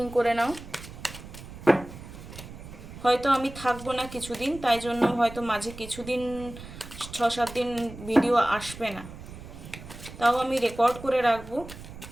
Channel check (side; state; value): right; noise; rumble, 14 dB below the sound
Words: করে নাও। হয়তো আমি থাকবো না কিছুদিন, তাই জন্য হয়তো মাঝে কিছুদিন 6-7 দিন ভিডিও আসবে না, তাও আমি রেকর্ড করে রাখবো,